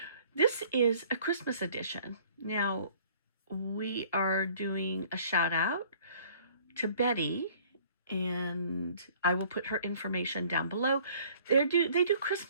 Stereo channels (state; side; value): inverted; both; correlation -0.54